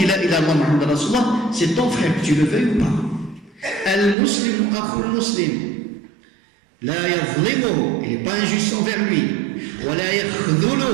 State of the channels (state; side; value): drops out; left; at 4.2 s